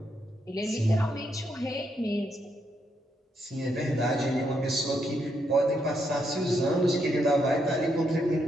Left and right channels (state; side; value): normal; both; correlation 0.78